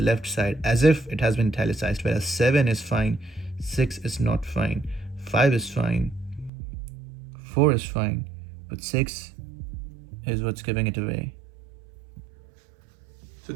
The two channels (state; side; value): drops out; left; at 6.5 s